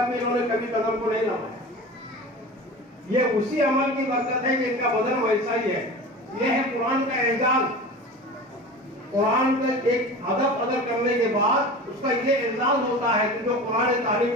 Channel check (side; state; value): both; normal; correlation 0.34